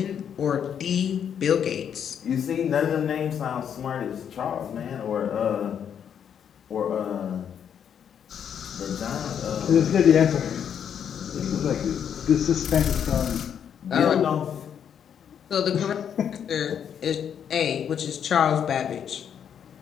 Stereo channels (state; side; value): quieter; right; 8.4 dB